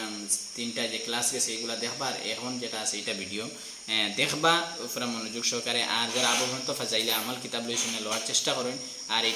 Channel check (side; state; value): both; identical; correlation 1.00